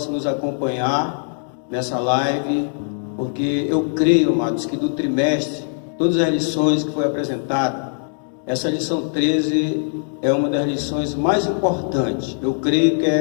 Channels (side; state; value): right; silent; digital silence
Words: nos acompanhar nessa live, porque eu creio, amados, que do trimestre, todas as lições que foi apresentada, essa lição 13 é uma das lições mais importantes. Eu creio que